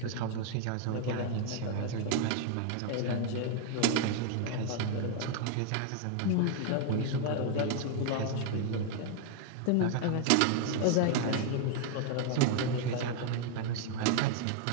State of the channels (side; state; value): both; different; correlation 0.00